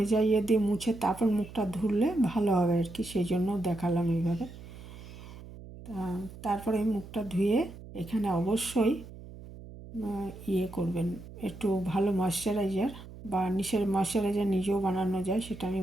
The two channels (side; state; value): right; noise; hum, 15 dB below the sound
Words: দিয়ে মুছে তারপর মুখটা ধুলে ভালো হবে আর কি, সেই জন্য দেখালাম এইভাবে। তারপরে মুখটা ধুয়ে এখানে অবশ্যই করবেন, একটু ভালো ময়েশ্চারাইজার বা নিশের ময়েশ্চারাইজার নিজেও বানানো যায়, সেটা আমি